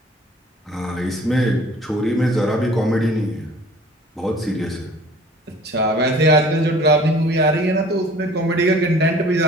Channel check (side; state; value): both; normal; correlation 0.49